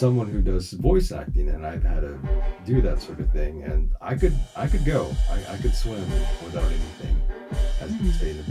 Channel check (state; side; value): identical; both; correlation 1.00